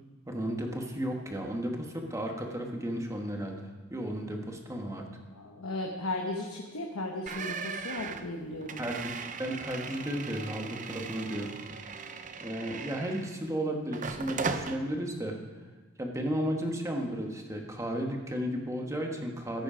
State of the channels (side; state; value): both; normal; correlation 0.58